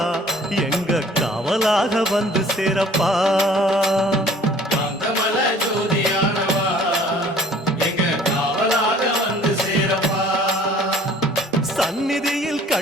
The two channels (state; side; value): normal; both; correlation 0.52